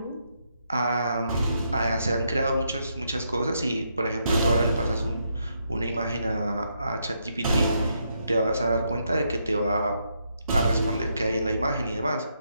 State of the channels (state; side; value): inverted; both; correlation -0.78